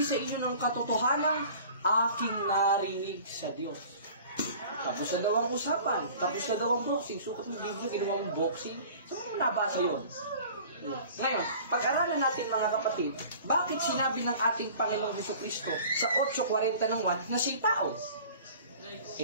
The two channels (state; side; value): inverted; both; correlation -0.45